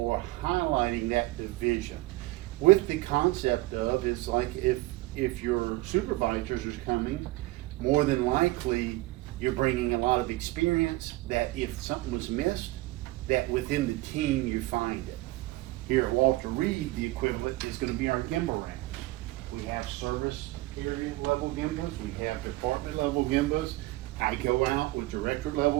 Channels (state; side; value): quieter; left; 19.7 dB